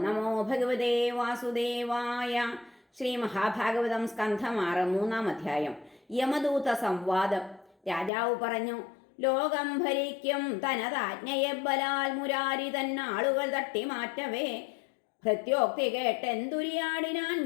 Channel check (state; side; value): drops out; right; at 8.1 s